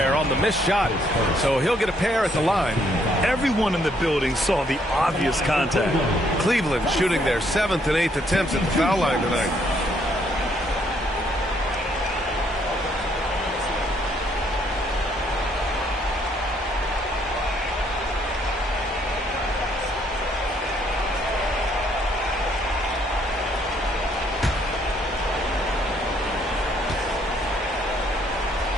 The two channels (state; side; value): normal; both; correlation 0.69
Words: on the missed shot. So he'll get a pair at the line. Everyone in the building saw the obvious contact. Cleveland shooting their 7th and 8th attempts at the foul line tonight.